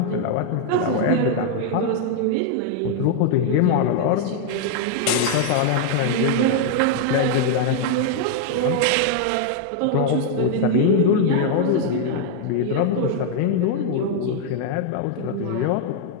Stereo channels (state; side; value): different; both; correlation 0.00